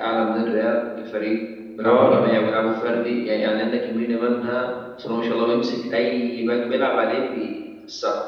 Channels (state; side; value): identical; both; correlation 1.00